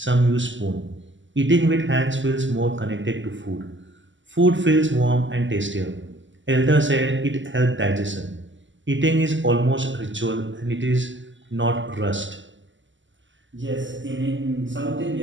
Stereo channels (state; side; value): late; left; 0.54 ms